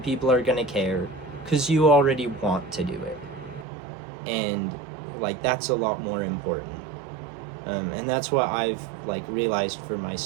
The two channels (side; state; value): left; drops out; at 3.7 s